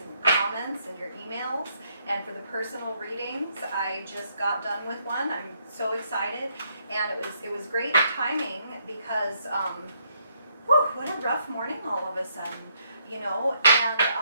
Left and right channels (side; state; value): both; inverted; correlation -0.73